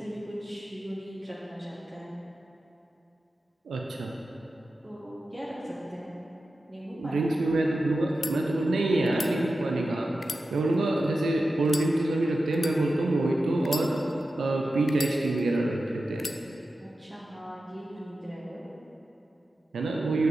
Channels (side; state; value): both; normal; correlation 0.92